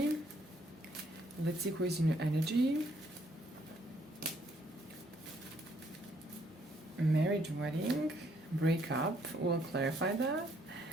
Let's see who is in your energy. Marriage, wedding, breakup. We'll clarify that.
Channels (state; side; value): normal; both; correlation 0.69